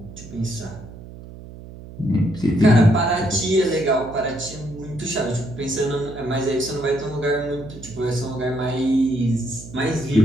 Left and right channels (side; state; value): right; noise; hum, 15 dB below the sound